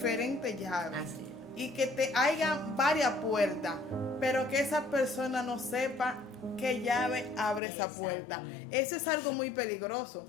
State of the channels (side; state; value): right; drops out; at 7.6 s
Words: llaves. Y que te haya varias puertas, pero que esa persona no sepa qué llave abre esa puerta. Eso es algo muy peligroso.